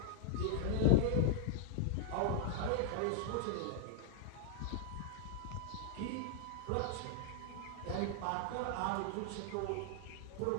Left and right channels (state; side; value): different; both; correlation 0.00